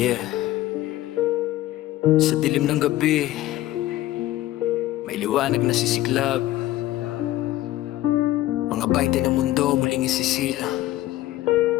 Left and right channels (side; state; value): right; quieter; 15.2 dB